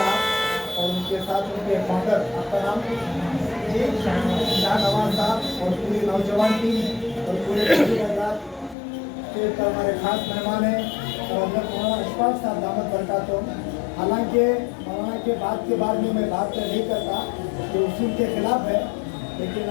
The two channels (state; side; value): drops out; right; at 8.8 s